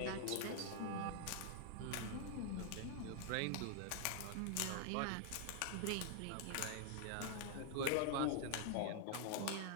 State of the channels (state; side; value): different; both; correlation 0.00